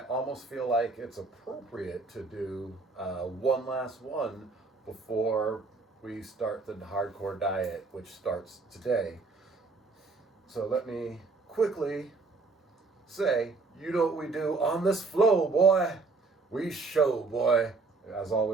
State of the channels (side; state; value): left; quieter; 3.9 dB